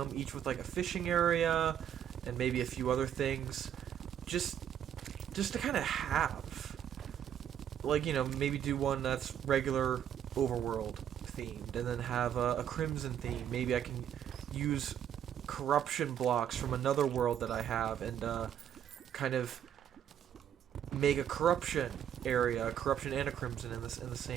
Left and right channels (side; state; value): left; quieter; 9.6 dB